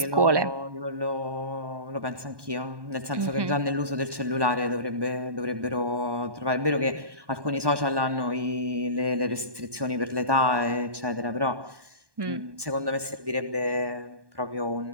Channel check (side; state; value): left; late; 1.2 ms